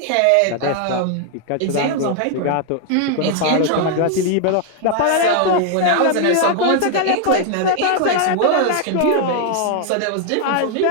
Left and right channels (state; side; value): different; both; correlation 0.00